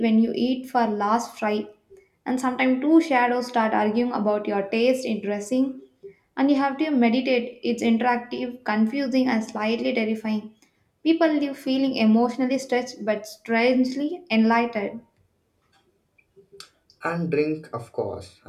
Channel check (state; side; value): identical; both; correlation 1.00